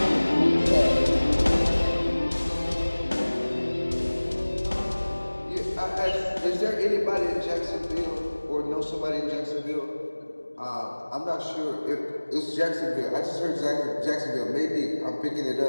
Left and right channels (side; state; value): both; inverted; correlation -1.00